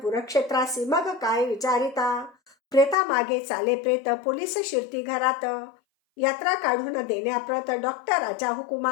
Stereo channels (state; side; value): drops out; right; at 3.0 s